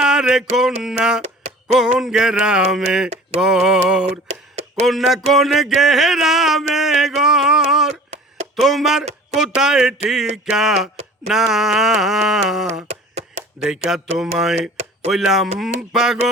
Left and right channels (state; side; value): normal; both; correlation 0.44